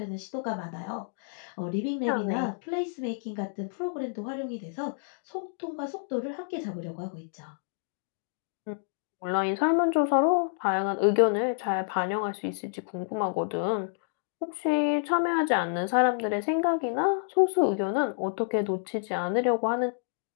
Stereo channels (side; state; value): right; silent; digital silence